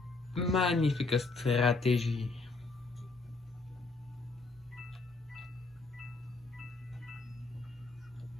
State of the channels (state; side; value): quieter; right; 3.7 dB